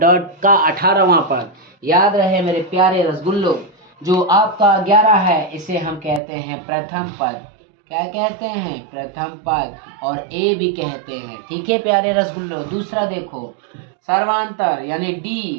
18वां पद। याद रहे मेरे प्यारे रसगुल्लो, जो आपका 11 है इसे हम कहते हैं प्रथम पद। क्या कहते हैं, प्रथम पद, और ए भी कहते हैं। ठीक है प्यारे रसगुल्लो। दूसरा देखो, सर्वांतर यानी डी,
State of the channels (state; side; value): drops out; left; at 6.2 s